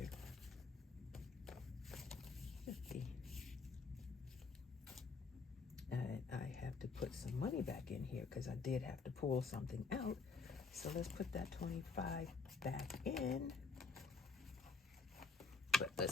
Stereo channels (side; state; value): right; quieter; 4.3 dB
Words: 50. I have to put some money back in here because I did have to pull something out. So let's put that 25 back in. But